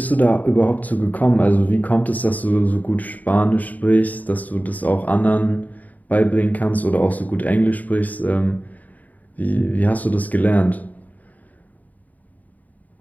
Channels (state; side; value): late; right; 0.077 ms